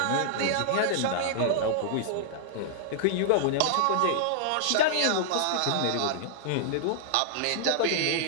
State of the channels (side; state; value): both; different; correlation -0.01